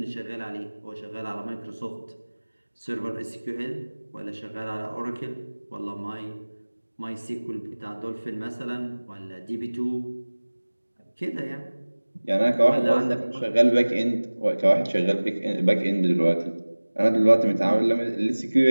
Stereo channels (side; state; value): both; inverted; correlation -1.00